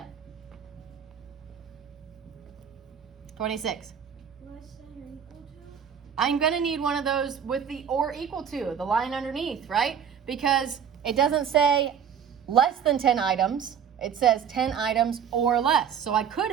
26. Less than or equal to? I'm going to need one of those with the or equal to, the line underneath, right? Because it doesn't say less than 10 items. It says 10 items or less. So I could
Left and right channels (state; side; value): quieter; left; 8.0 dB